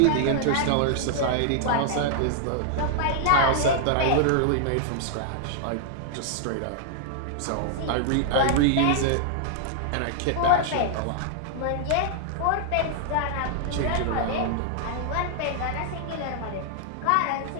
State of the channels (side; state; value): both; different; correlation -0.01